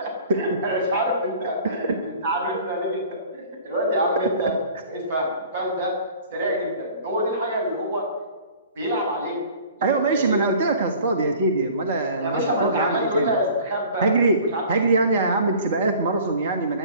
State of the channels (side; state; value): both; inverted; correlation -0.47